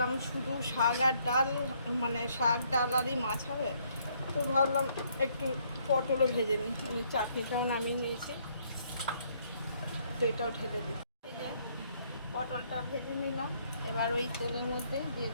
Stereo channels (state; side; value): inverted; both; correlation -0.68